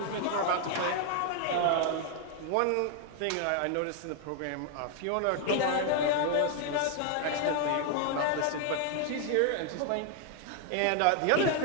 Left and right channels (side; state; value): both; different; correlation 0.00